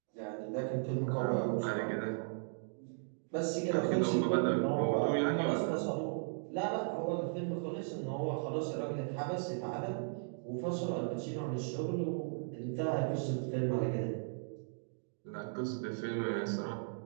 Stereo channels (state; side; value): silent; left; digital silence